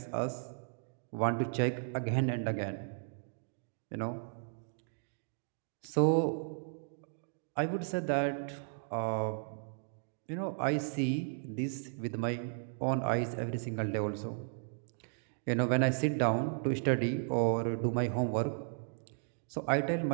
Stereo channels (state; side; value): silent; left; digital silence